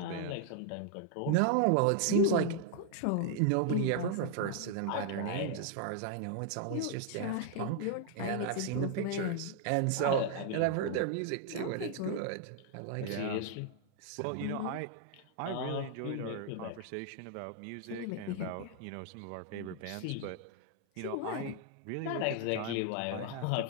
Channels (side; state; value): both; different; correlation 0.00